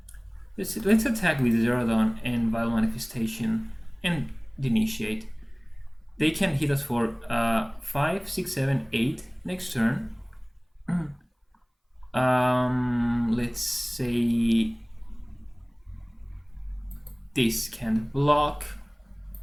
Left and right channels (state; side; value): identical; both; correlation 1.00